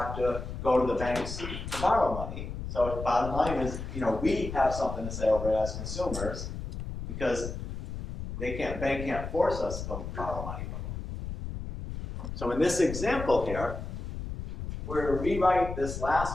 to go to the banks to borrow money. So the bottom line is, we have something to say over it as consumers because bank can't force us to borrow money from them. So in this example here, we're going to rewrite this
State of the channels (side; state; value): left; noise; rumble, 7 dB below the sound